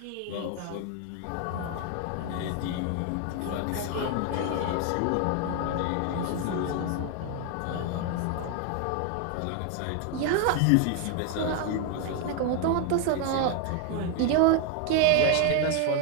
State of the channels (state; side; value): different; both; correlation 0.01